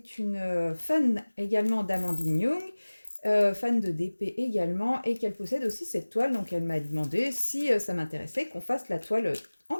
une fan également d'Amandine Young, fan de DP également, et qu'elle possède aussi cette toile. Donc elle m'a demandé si ça m'intéressait qu'on fasse la toile en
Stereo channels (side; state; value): both; inverted; correlation -1.00